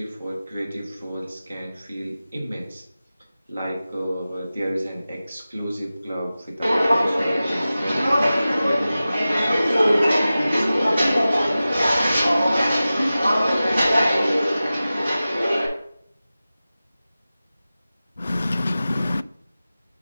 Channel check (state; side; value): inverted; both; correlation -0.95